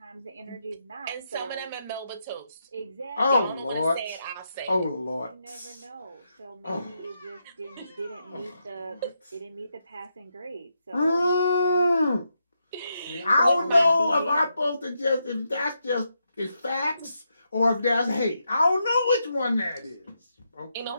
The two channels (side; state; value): both; inverted; correlation -0.82